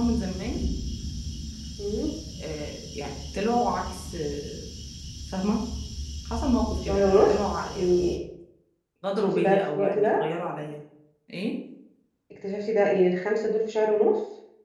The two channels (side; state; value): both; identical; correlation 1.00